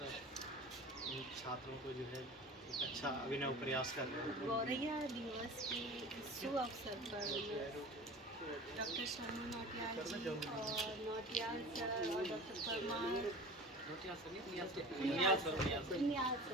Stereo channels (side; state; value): both; normal; correlation 0.38